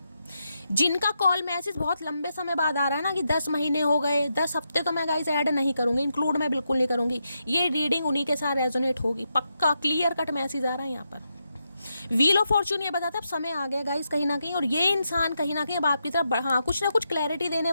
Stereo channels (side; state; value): both; inverted; correlation -0.84